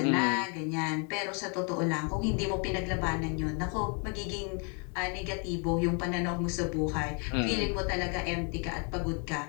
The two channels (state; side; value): quieter; right; 37.0 dB